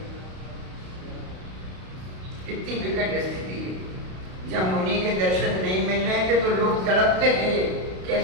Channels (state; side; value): late; left; 32 ms